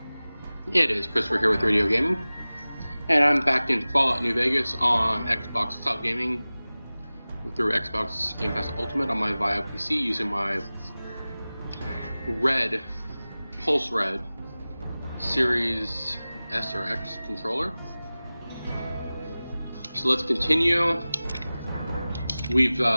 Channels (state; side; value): inverted; both; correlation -0.98